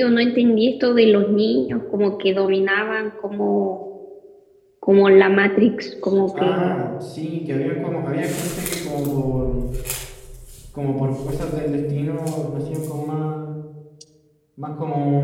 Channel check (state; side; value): identical; both; correlation 1.00